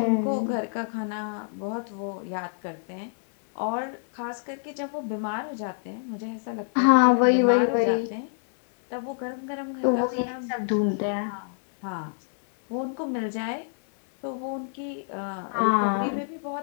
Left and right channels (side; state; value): right; silent; 60 dB below the other